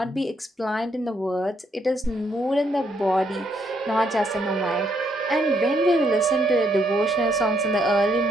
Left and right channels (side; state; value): both; normal; correlation 0.73